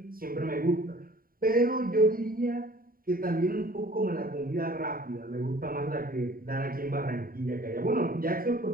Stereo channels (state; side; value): late; left; 0.42 ms